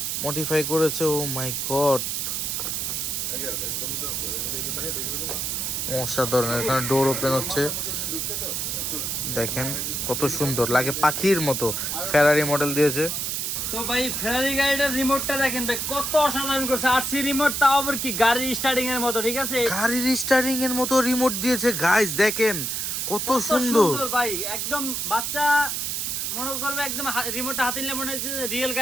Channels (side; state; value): right; noise; hiss, 1 dB below the sound